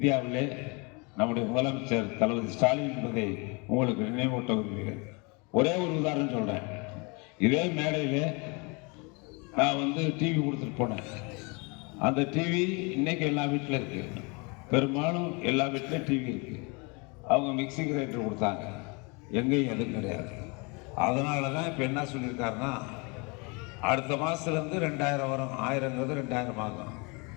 நம்முடைய முதலமைச்சர் தளபதி ஸ்டாலின் என்பதை உங்களுக்கு நினைவூட்ட விரும்புகிறேன். ஒரே ஒரு உதாரணம் சொல்றேன். இதே மேடையிலே நான் டிவி கொடுத்துட்டு போனேன். அந்த டிவி இன்னைக்கு எல்லா வீட்டில் இருக்கு. பெரும்பாலும் எல்லா வீட்டிலும் டிவி இருக்கு. அவங்க மிக்சி கிரைண்டர் கொடுத்தாங்க, எங்கேயும் எதுவும் கிடையாது. அதனால தான் இப்போ என்ன சொல்லியிருக்காருன்னா, அடுத்த மாதத்துலேருந்து 2000 வரும். 1000ங்கிறது 2000 ஆகும்.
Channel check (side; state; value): right; quieter; 30.2 dB